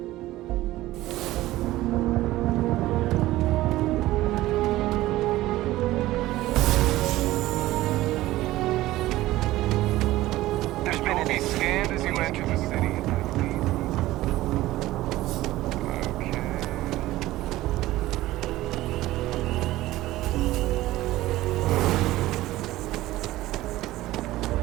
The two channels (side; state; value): left; quieter; 16.5 dB